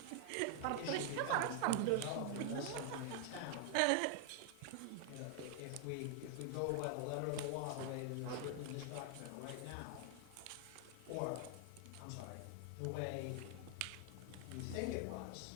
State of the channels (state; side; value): different; both; correlation 0.00